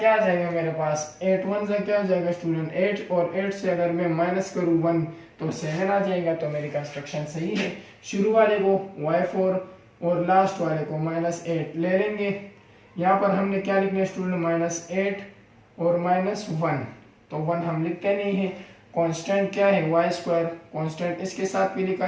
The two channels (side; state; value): both; identical; correlation 1.00